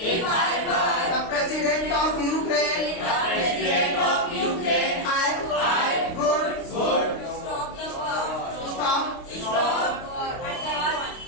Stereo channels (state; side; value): late; right; 29 ms